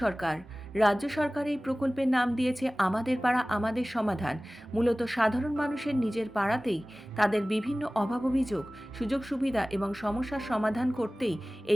সরকার। রাজ্য সরকার এই প্রকল্পের নাম দিয়েছে আমাদের পাড়া আমাদের সমাধান। মূলত সাধারণ মানুষের নিজের পাড়াতেই তাদের বিভিন্ন অভাব অভিযোগ, সুযোগ সুবিধা এবং সমস্যার সমাধান করতেই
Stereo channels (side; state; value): both; normal; correlation 0.98